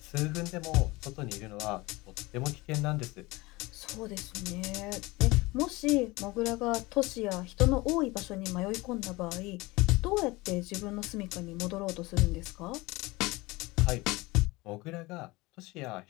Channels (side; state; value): right; quieter; 22.1 dB